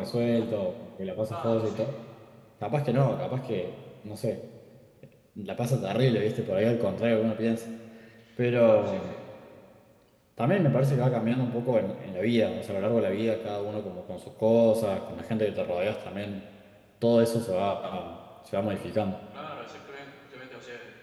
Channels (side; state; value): both; identical; correlation 1.00